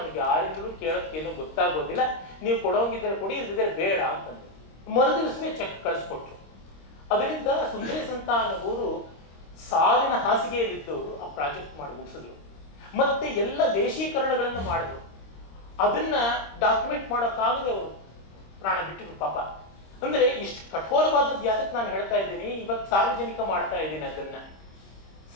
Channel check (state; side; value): late; right; 26 ms